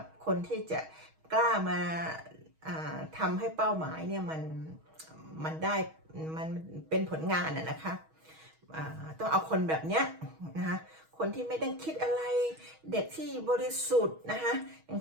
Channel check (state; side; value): late; left; 6.3 ms